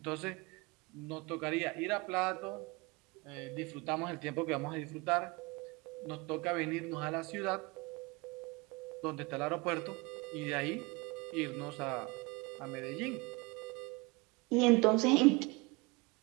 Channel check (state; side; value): quieter; left; 26.1 dB